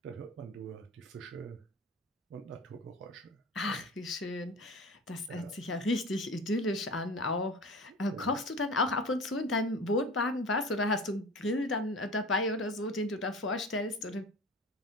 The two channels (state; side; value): normal; both; correlation 0.34